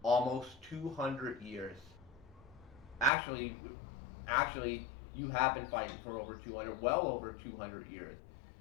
almost 200 years. Actually, you have been fighting for over 200, well over 200 years.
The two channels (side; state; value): right; drops out; at 3.1 s